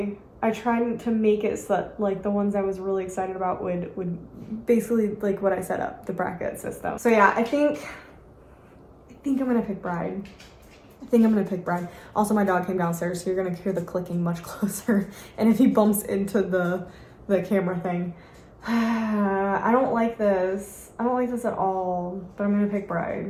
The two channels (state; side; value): identical; both; correlation 1.00